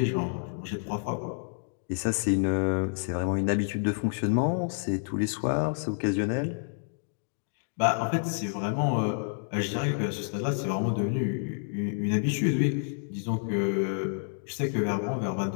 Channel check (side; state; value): right; silent; digital silence